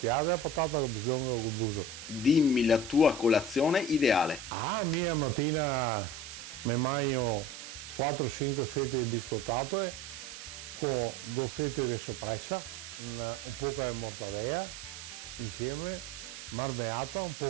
la patata con bislonga col buso. Dimmi la tua colazione ideale. Ah, mia mattina mi mangio 4-5 fette di biscottato con 2 fette di soppressa, un po' di mortadella insieme, marmeata, un po'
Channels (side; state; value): right; noise; hiss, 11 dB below the sound